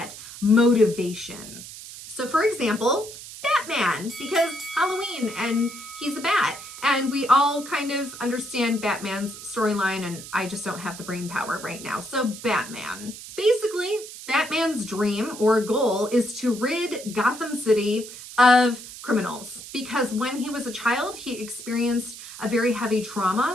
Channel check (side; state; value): right; noise; hiss, 13 dB below the sound